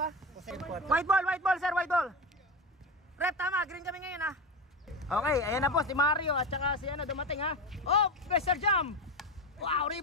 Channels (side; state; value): both; normal; correlation 0.20